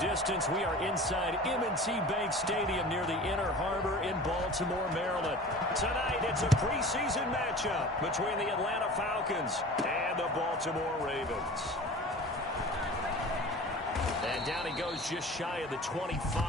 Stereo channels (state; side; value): normal; both; correlation 0.39